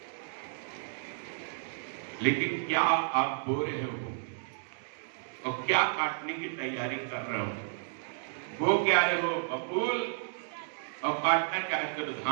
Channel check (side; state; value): left; silent; digital silence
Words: लेकिन क्या आप बो रहे हो और क्या काटने की तैयारी कर रहे हो? वो क्या रहे हो बबूल और काटना चाहते हो